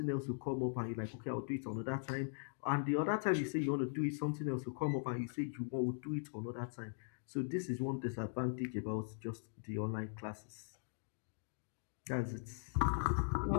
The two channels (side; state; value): right; silent; digital silence